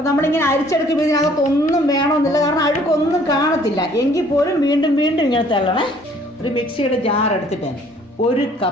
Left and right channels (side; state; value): both; normal; correlation 0.58